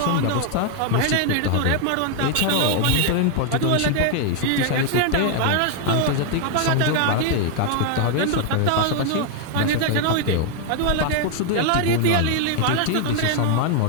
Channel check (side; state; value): both; different; correlation 0.00